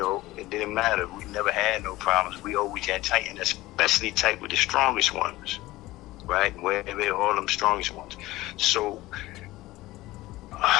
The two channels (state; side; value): quieter; right; 18.0 dB